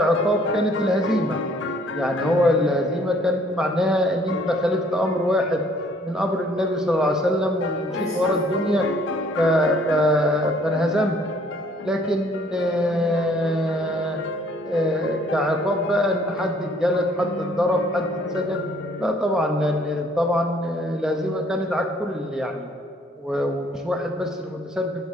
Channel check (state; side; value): normal; both; correlation 0.60